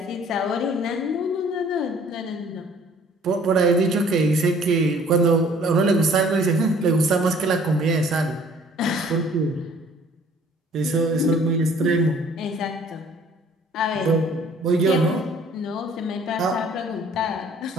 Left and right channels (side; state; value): both; normal; correlation 0.55